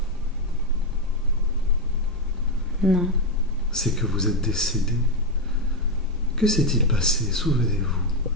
Non. C'est que vous êtes décédée. Que s'est-il passé?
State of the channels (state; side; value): normal; both; correlation 0.06